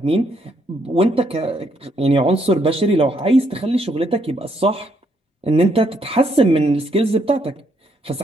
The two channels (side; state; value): both; normal; correlation 0.73